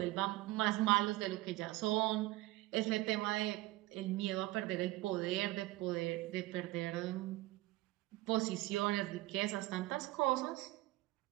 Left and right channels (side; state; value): left; quieter; 19.0 dB